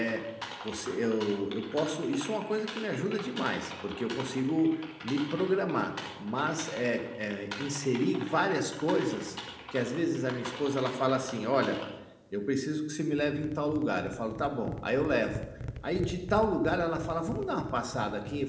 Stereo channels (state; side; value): identical; both; correlation 1.00